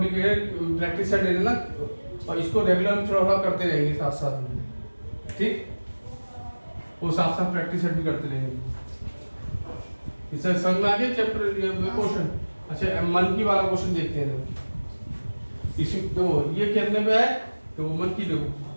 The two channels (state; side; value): inverted; both; correlation -1.00